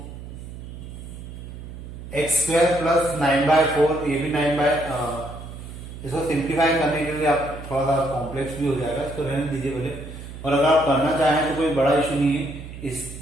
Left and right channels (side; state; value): right; noise; hum, 12 dB below the sound